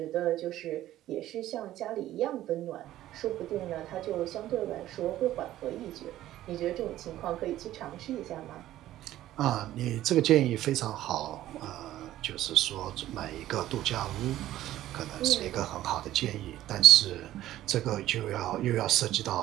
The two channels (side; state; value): left; quieter; 13.9 dB